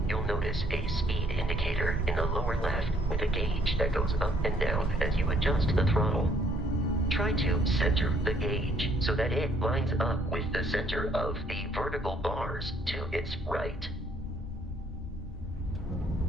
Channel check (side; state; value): both; normal; correlation 0.65